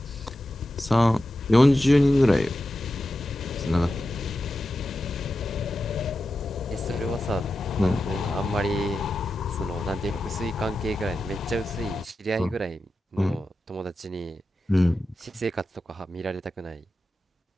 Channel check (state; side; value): normal; both; correlation 0.91